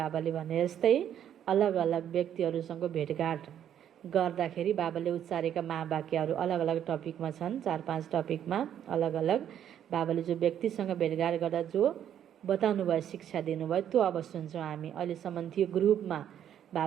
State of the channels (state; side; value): quieter; left; 10.0 dB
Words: भने जस्तै अलग अलग व्यक्तिहरूसँग भेटघाट गर्दाखेरि बाबाले उच्चारेका महावाक्यहरू अलग अलग टपिकमा छन्। 4-5 टपिकमा अलग अलग बाबाले जो व्यक्तिसँग भेटघाट गर्दा जो बताउनु भयो, शिक्षा दिनुभयो, त्यो अब सुन्छौँ हामी। अहिलेसम्म थियो ग्रुपमा